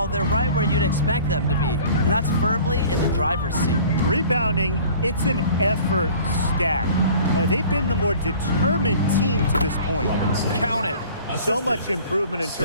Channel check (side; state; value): both; inverted; correlation -0.47